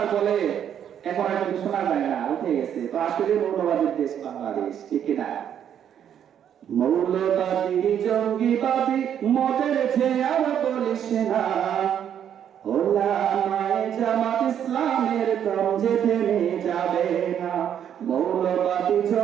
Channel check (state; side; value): quieter; left; 9.3 dB